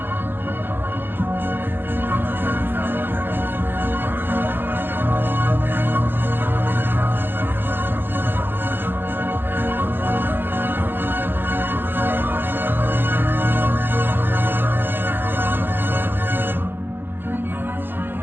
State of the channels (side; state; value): left; late; 0.099 ms